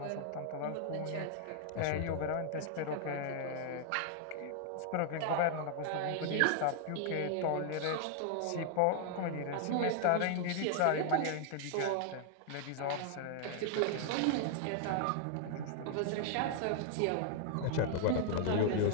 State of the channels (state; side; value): different; both; correlation 0.00